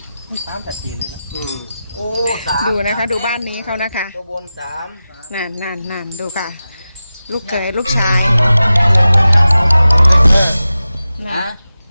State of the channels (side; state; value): both; inverted; correlation -0.94